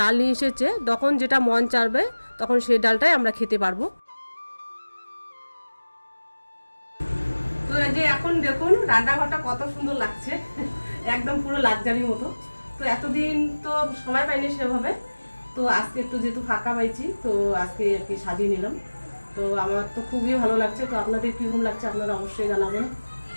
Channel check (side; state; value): both; inverted; correlation -1.00